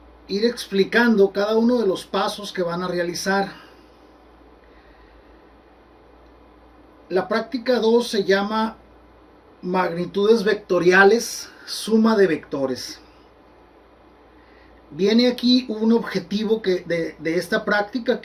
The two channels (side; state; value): both; identical; correlation 1.00